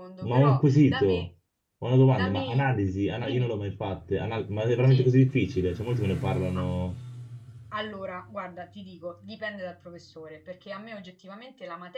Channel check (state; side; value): identical; both; correlation 1.00